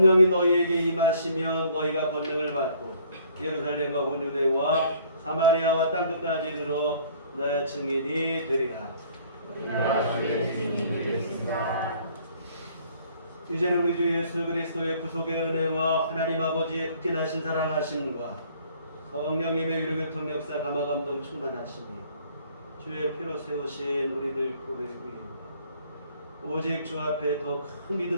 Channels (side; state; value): both; inverted; correlation -0.58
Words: 너희에게 임하시면 너희가 권능을 받고 예루살렘과 온 유대와 사마리아와 땅끝까지 이르러 내 증인이 되리라. 이제는 우리 주 예수 그리스도의 구속의 은혜와 하나님 아버지의 극진하신 사랑하심과 성령님의 위로교통 역사 감화 감동 충만하심이 주의 피로 세우신 우리들 교회 위에 오직 주 앞에 더 큰